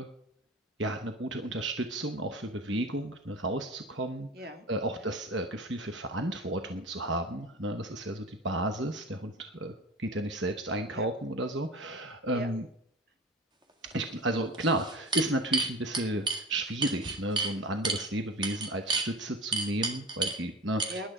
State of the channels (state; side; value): normal; both; correlation 0.33